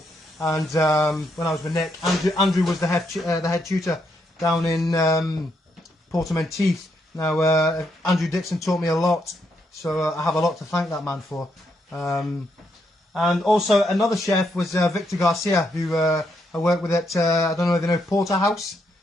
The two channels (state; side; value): normal; both; correlation 0.78